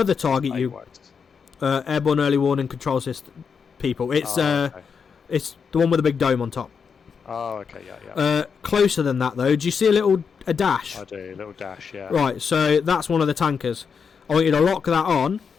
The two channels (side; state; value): right; quieter; 6.2 dB